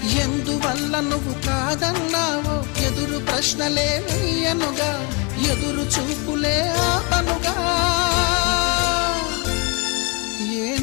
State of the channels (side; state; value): right; quieter; 31.3 dB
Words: ఎందువల్ల నువ్వు కాదన్నావో ఎదురు ప్రశ్నలే వేయనుగా, ఎదురు చూపులే ఆపనుగా.